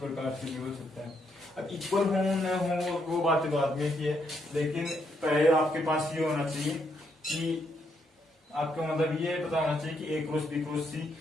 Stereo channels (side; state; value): both; normal; correlation 0.76